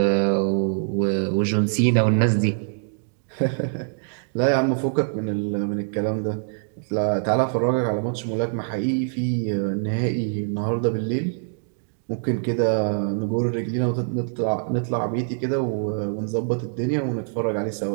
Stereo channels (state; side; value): silent; left; digital silence